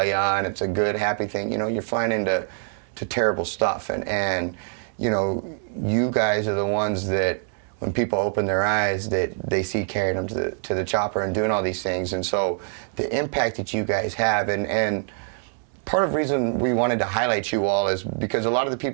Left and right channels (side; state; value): left; silent; 62 dB below the other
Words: and it's a good happy thing. You're flying into terrible stuff, and you guys are the ones that when people open their eyes, that they see carrying them to the chopper and doing all these things. And so the impact that you guys have, and part of the reason we wanted to highlight you all is because a lot of the